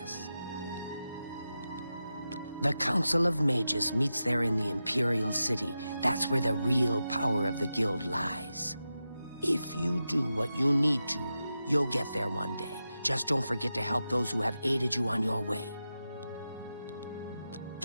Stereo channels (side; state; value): both; inverted; correlation -0.91